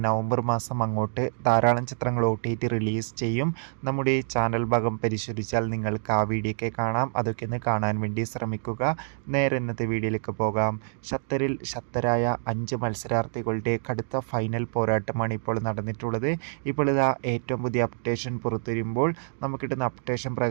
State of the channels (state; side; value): silent; left; digital silence